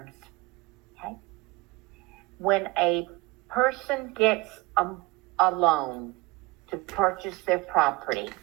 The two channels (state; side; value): quieter; left; 21.6 dB